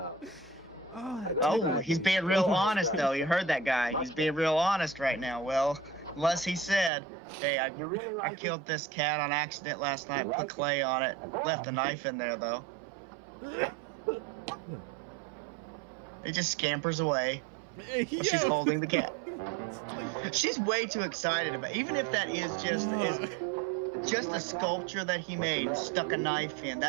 Oh, that Oh, cat- he's being real honest though. You heard that guy. He's being real honest right now. Well, unless he said, "Hey, I killed this cat on accident last night. Put clay on it. Left a knife in there though." It just scampers away while she's Yo. holding the cat. It's like- She's way too excited about. Even if that is just a sculpture that he made and stuck a knife in,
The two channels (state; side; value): drops out; left; at 6.9 s